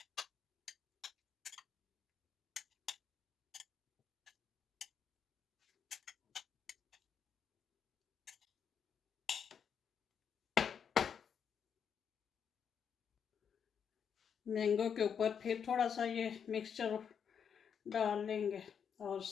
मैंगो के ऊपर फिर थोड़ा सा ये मिक्सचर डाल लेंगे, और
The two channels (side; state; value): right; quieter; 7.4 dB